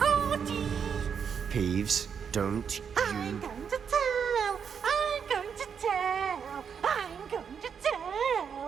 Peeves, don't I'm going to tell. I'm going to tell. I'm going to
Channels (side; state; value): left; quieter; 7.0 dB